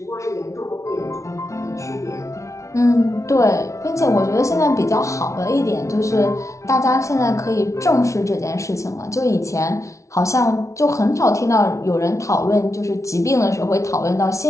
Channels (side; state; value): right; late; 0.14 ms